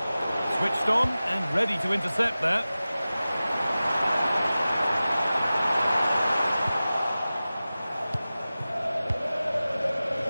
Switched on and ready to intercept that.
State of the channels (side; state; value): both; inverted; correlation -0.96